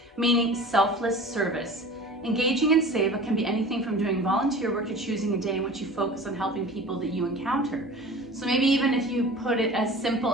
meaning selfless service. Engaging in seva can be anything from doing volunteer work to choosing a day in which you focus on helping people that you encounter. So maybe even if you put it as simple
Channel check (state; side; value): normal; both; correlation 0.39